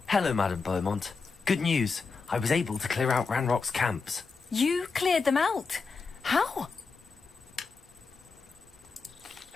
Hello, Madame Beaumont. Good news. I was able to clear out Ranrock's camps. You cleared them out? How?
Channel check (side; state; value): right; quieter; 4.7 dB